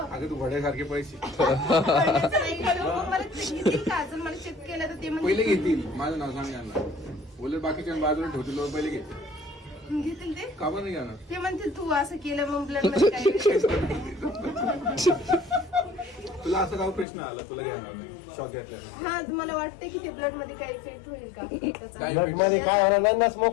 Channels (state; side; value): drops out; right; at 17.1 s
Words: तू वड्यासारखे पैसे पडण्याचं नाही हो. मला घेतील का अजून मला चेक केलं तर ते पहिले घेतील. माझं नाव सांग यांना. बोलले बाकीच्या बाजूला ठेवतील लोक पहिले घेतील. घेतील ते का पण नाही घेणार? ते म्हणतील तू असं केलं मग ब्लड मध्ये काय तुला असं काय प्रश्न आला तुला घेणार नाही शॉक घेतला हा मला वाटते की ते ब्लड मध्ये काही इफेक्ट होईल का त्याचा. काय ब्लड मध्ये काय होणार नाही ना,